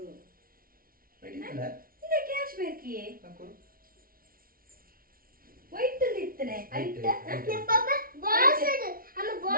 Ready? The cash back ye. White to littane. Aita. Papa, boss idu. Amma Box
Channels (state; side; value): late; left; 0.42 ms